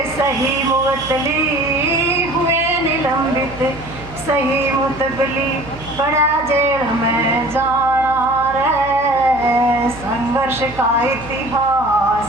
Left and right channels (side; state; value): right; noise; hum, 16 dB below the sound